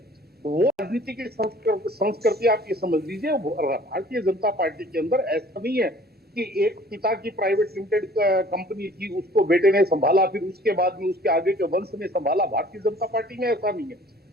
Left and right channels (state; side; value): normal; both; correlation 0.52